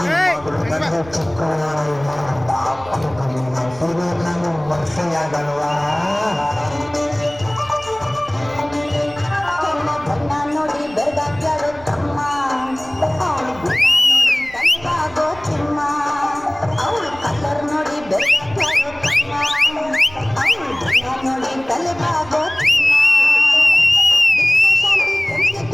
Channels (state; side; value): noise; right; rumble, 20 dB below the sound